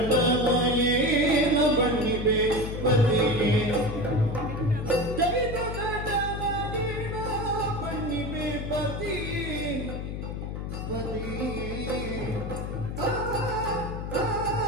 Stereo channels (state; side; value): noise; left; hum, 5 dB below the sound